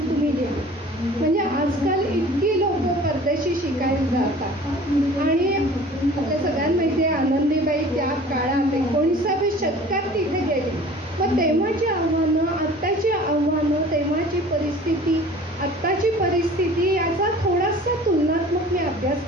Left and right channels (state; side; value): normal; both; correlation 0.45